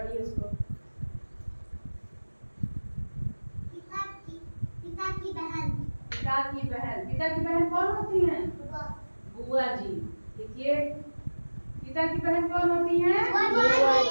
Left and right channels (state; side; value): inverted; both; correlation -1.00